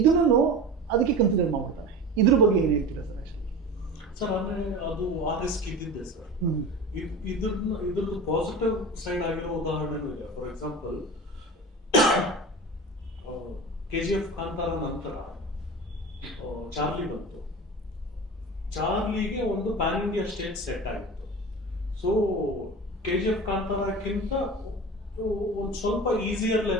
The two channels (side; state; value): both; normal; correlation 0.32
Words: ಅದಕ್ಕೆ ಕನ್ಸಿಡರ್ ಮಾಡ್ಬಿಡ್ತಾನೆ. ಇದ್ರ ಬಗ್ಗೆ ಏನು ಹೇಳ್ತೀರಾ ಸರ್? ಆ್ಯಕ್ಚುಲಿ ಸರ್ ಅಂದರೆ ಅದು ಆ ರಿಸ್ಕ್ ಇದ್ದಿದ್ದೆ ಸರ್. ಇದ್ರದ್ದು ಪಾಸಿಟಿವ್ ಸೈಡ್ ಆಗಿರೋ ಉದಾಹರಣೆನೂ ಇದೆ. ಫಾರ್ ಎಕ್ಸಾಂಪಲ್ KGF ಕಾಂತಾರ ನಂತರ ಚಾರ್ಲಿ ಬಂತು. ಚಾರ್ಲಿಗೆ ಒಂದು ಪ್ಯಾನ್ ಇಂಡಿಯಾ ಸ್ಟೇಜ್ ಸೆಟ್ ಆಗಿತ್ತು. ಸೊ KGF ಕಾಂತಾರಕ್ಕಿಂತ ಒಂದು ಸ್ವಲ್ಪ ಈಸಿಯರ್